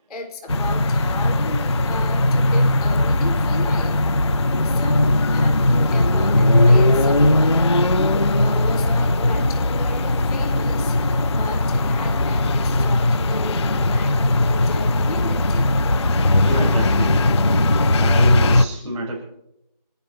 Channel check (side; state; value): both; inverted; correlation -0.83